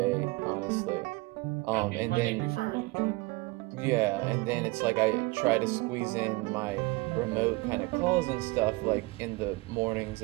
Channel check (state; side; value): quieter; left; 24.5 dB